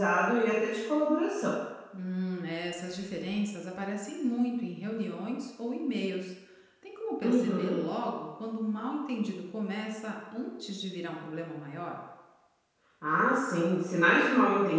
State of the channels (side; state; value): both; identical; correlation 1.00